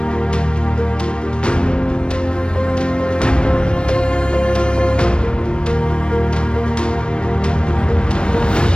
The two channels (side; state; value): right; late; 0.054 ms